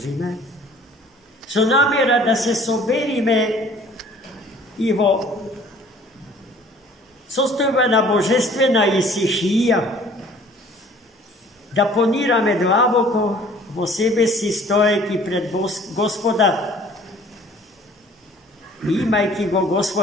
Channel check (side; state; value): both; normal; correlation 0.53